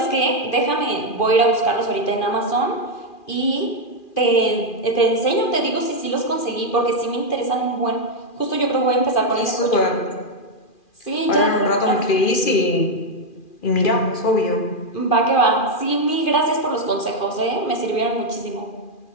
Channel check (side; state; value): right; late; 2.4 ms